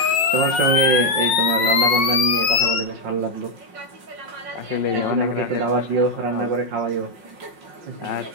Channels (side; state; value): left; late; 5.5 ms